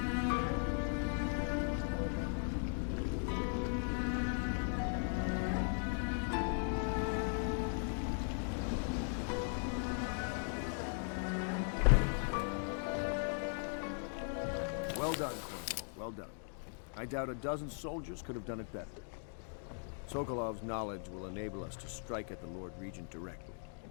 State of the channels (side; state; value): right; silent; 52 dB below the other